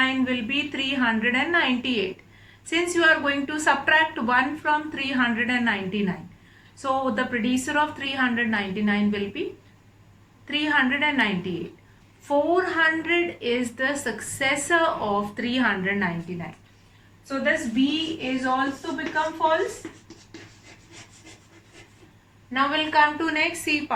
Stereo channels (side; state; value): both; identical; correlation 1.00